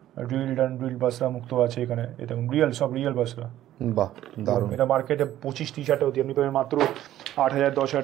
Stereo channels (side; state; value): left; quieter; 13.0 dB